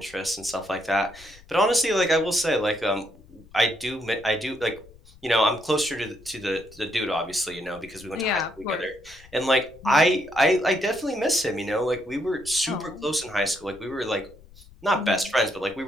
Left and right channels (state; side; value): noise; left; rumble, 24 dB below the sound